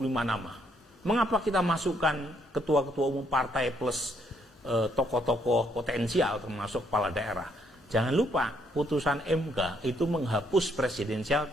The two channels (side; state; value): both; normal; correlation 0.71